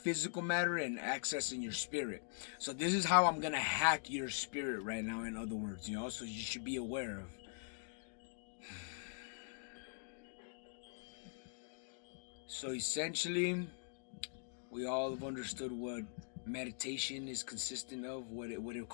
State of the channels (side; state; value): right; silent; digital silence